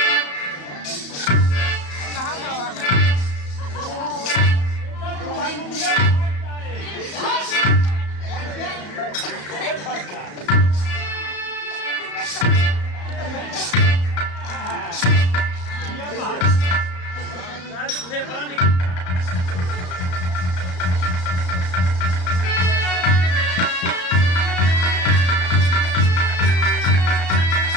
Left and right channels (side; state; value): right; late; 34 ms